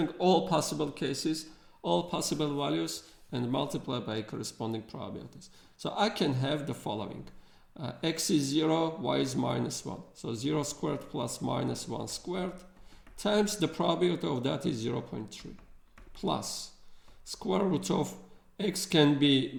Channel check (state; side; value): identical; both; correlation 1.00